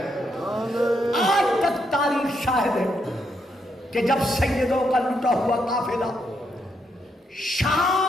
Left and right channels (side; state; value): both; normal; correlation 0.78